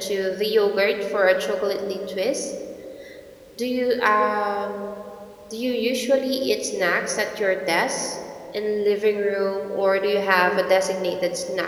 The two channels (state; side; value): identical; both; correlation 1.00